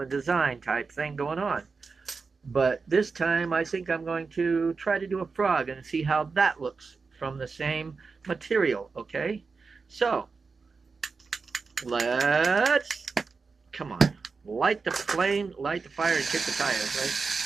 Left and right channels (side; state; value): left; quieter; 4.6 dB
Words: design type thing going on. But this time I think I'm going to try to do a frog and see how that looks from the same material, okay? So, let's, come on, light the flame, light the fire, and kick the tires,